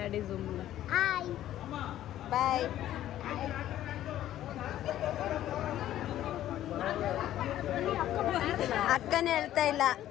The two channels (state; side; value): quieter; right; 12.8 dB